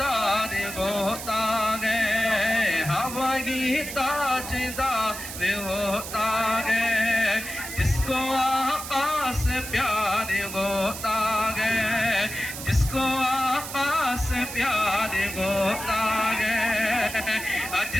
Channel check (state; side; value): noise; right; hiss, 9 dB below the sound